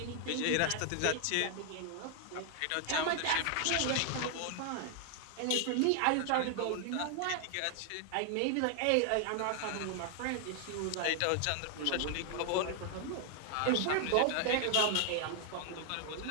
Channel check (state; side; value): different; both; correlation 0.00